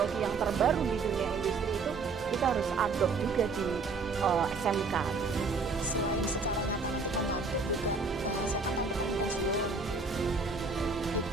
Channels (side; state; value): left; quieter; 4.2 dB